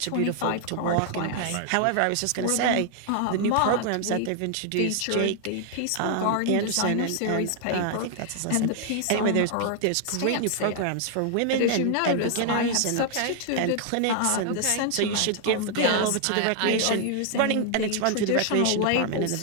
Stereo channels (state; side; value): different; both; correlation 0.00